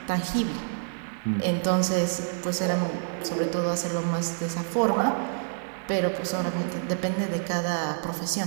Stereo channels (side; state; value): left; silent; digital silence